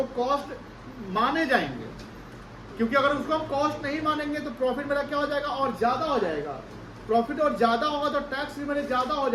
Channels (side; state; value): both; identical; correlation 1.00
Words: कॉस्ट माने जाएंगे, क्योंकि अगर उसको हम कॉस्ट नहीं मानेंगे तो प्रॉफिट मेरा क्या हो जाएगा, और ज्यादा हो जाएगा। प्रॉफिट और ज्यादा होगा तो टैक्स भी मेरे ज्यादा हो